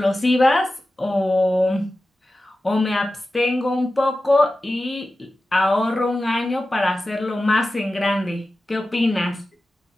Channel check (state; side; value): normal; both; correlation 0.94